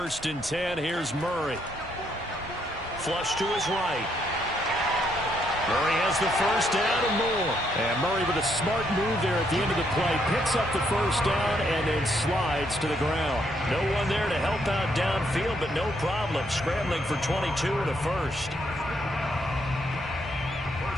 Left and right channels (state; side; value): normal; both; correlation 0.74